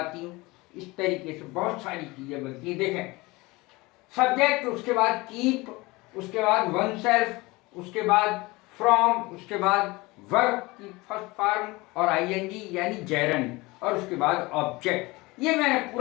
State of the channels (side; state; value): right; quieter; 22.8 dB